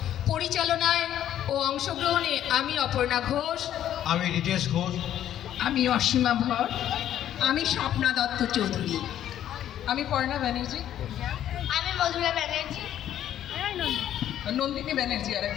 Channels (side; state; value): right; quieter; 11.2 dB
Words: পরিচালনায় ও অংশগ্রহণে আমি অপর্ণা ঘোষ, আমি রিতেশ ঘোষ, আমি অসীমা ভর, আমি স্বপ্না দত্ত চৌধুরী, আমি পর্ণা ব্যানার্জি, আমি মধুরা ব্যানার্জি, নন্দিনী ব্যানার্জি আর